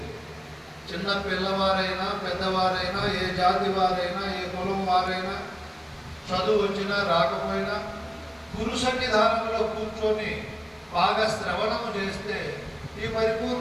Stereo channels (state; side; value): identical; both; correlation 1.00